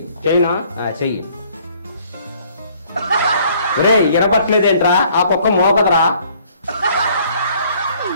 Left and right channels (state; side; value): inverted; both; correlation -0.60